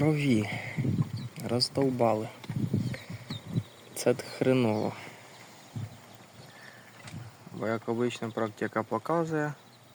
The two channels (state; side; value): identical; both; correlation 1.00